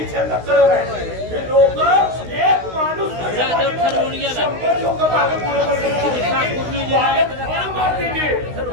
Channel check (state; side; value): late; left; 16 ms